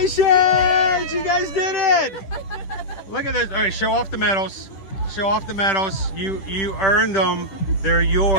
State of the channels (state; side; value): late; right; 10 ms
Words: You guys did it! Look at this. All right, show off the medals. Show off the medals. You earned them. They're